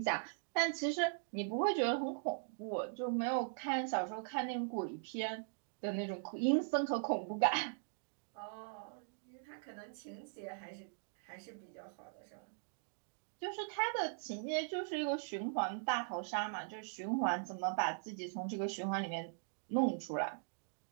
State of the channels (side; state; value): left; silent; digital silence